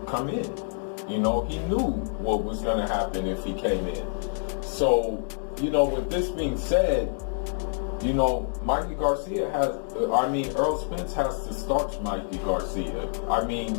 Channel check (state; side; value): silent; right; digital silence